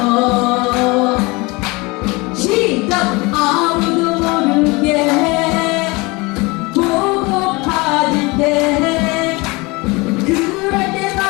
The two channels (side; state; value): right; quieter; 25.1 dB